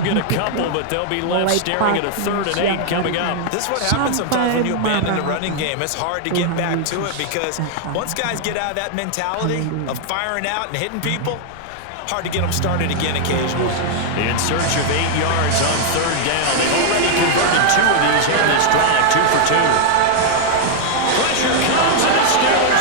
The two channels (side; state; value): both; different; correlation 0.00